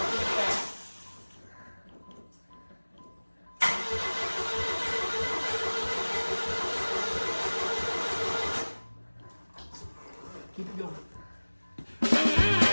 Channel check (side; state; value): both; inverted; correlation -1.00